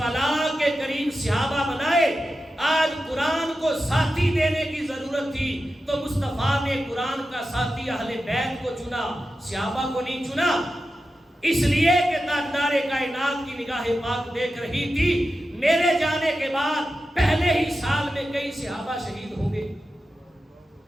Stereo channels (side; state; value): both; normal; correlation 0.91